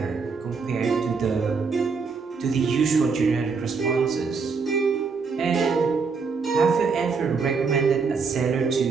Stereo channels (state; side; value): quieter; left; 5.0 dB